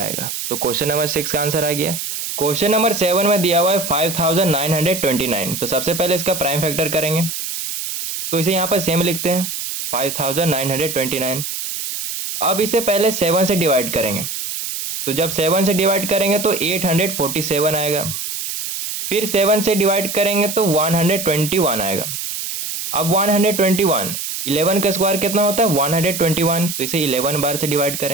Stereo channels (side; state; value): right; noise; hiss, 5 dB below the sound